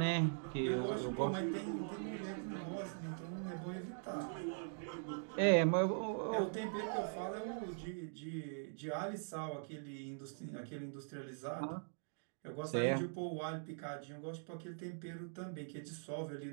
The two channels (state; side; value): silent; left; digital silence